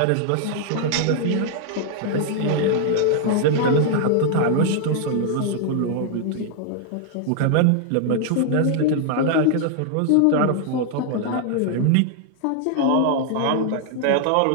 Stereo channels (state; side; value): different; both; correlation 0.00